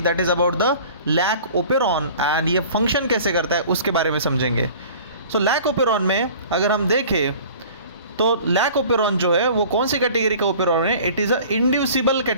that is about the lac operon and ये फंक्शन कैसे करता है उसके बारे में समझेंगे। सो लैक ओपेरॉन में अगर हम देखें तो लैक ओपेरॉन जो है वो कौन सी कैटेगरी का ओपेरॉन है? It is a inducible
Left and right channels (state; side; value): inverted; both; correlation -0.45